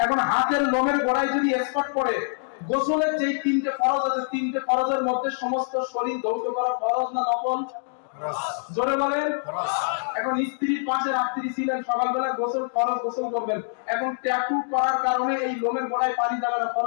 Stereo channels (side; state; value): right; silent; digital silence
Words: এখন হাতের লোমের গোড়ায় যদি স্পট পড়ে, গোসলের যেই 3টে ফরজ আছে, 3টে ফরজের মধ্যে সমস্ত শরীর ধৌত করা ফরজ না নফল? জোরে বলেন। এখন স্ত্রীর পাশে রাত্রি ছিলেন, সকালবেলা গোসল ফরজ গোসল করবেন। এখন ট্যাটু করার কারণে এই লোমের গোড়ায় পানি যাবে না,